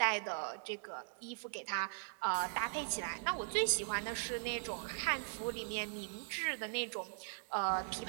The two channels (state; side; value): silent; left; digital silence